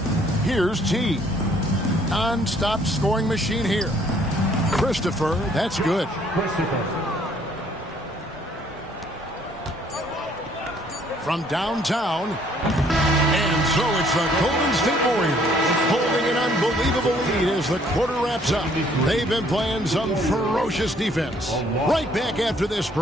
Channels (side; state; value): both; normal; correlation 0.62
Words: Here's T. Non-stop scoring machine here. Christopher, that's good. From downtown. And so it's the Golden State Warriors holding an unbelievable lead as the quarter wraps up. They've been playing some ferocious defense. Right back after this